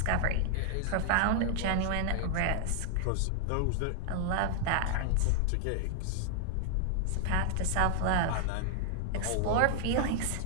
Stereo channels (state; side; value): different; both; correlation 0.00